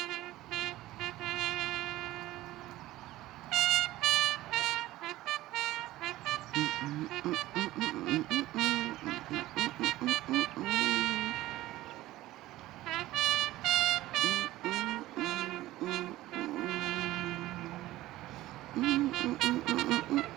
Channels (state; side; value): quieter; left; 16.5 dB